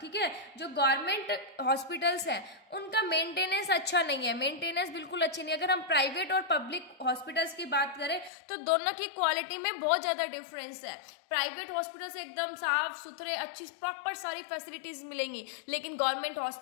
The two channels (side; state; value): right; drops out; at 8.3 s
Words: ठीक है, जो गवर्नमेंट हॉस्पिटल्स हैं उनका मेंटेनेंस अच्छा नहीं है, मेंटेनेंस बिल्कुल अच्छी नहीं है। अगर हम प्राइवेट और पब्लिक हॉस्पिटल्स की बात करें तो दोनों की क्वालिटी में बहुत ज़्यादा डिफरेंस है। प्राइवेट हॉस्पिटल्स एकदम साफ सुथरे अच्छी प्रॉपर सारी फैसिलिटीज मिलेंगी, लेकिन गवर्नमेंट